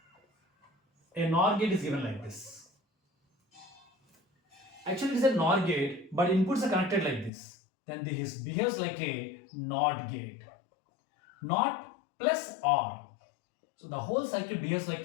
a NOR gate is given like this. Actually, it is a NOR gate, but inputs are connected like this. Then this behaves like a NOT gate. NOT plus OR. So the whole circuit behaves like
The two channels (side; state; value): right; drops out; at 7.3 s